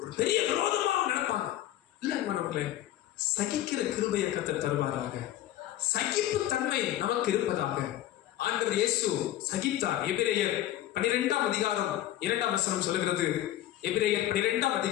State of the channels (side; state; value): right; quieter; 13.5 dB